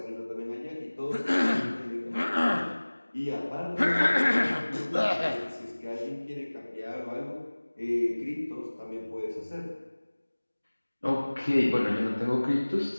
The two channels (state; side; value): inverted; both; correlation -1.00